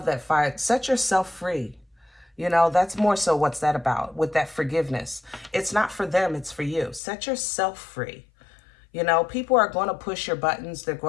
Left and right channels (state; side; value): drops out; right; at 7.0 s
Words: that fire. Set yourself free. You know, that's more so what's that about with that forgiveness. It's not for them, it's for you. Set yourself free. You know, people are going to push your buttons. They're